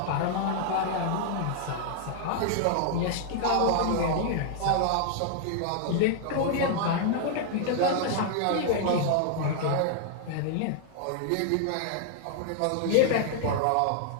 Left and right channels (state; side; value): different; both; correlation -0.01